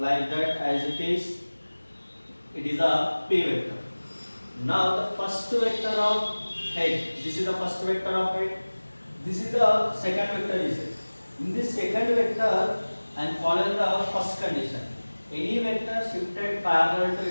that as it is. It is a P vector. Now the first vector of head. This is the first vector of head. This is the second vector is it. In this second vector, I am following the first condition. Any vector shifted parallel to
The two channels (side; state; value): both; inverted; correlation -1.00